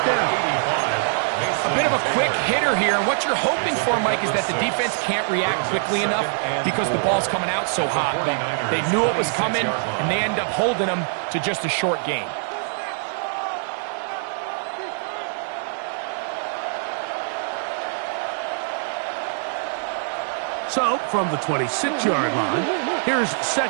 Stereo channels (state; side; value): silent; left; digital silence